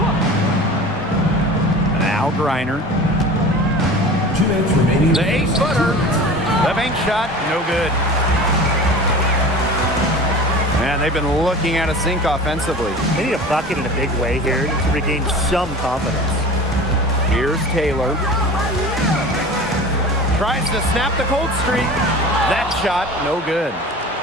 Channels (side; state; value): both; normal; correlation 0.37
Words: Now Griner. 2 minutes remaining. The 8-footer. The bank shot, no good. Man, they've been looking at a sink offensively. They need a bucket in a big way here to regain some confidence. Here's Taylor. Tries to snap the cold streak. That shot, no good.